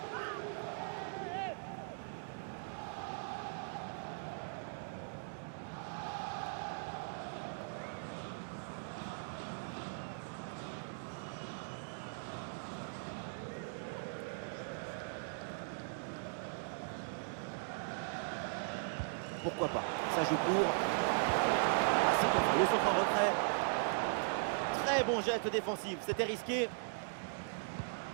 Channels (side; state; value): left; silent; digital silence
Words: Pourquoi pas? Ça joue court. Le centre en retrait. Très bon geste défensif. C'était risqué.